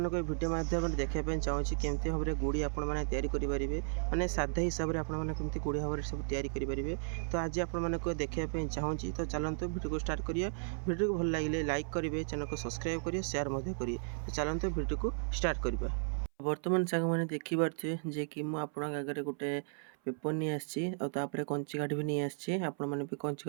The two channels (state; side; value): silent; left; 54 dB below the other